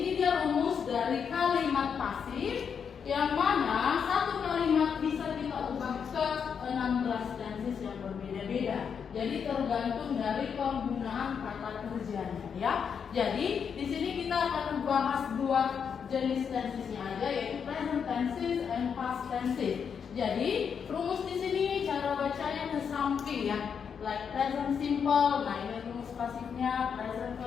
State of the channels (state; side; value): quieter; right; 6.9 dB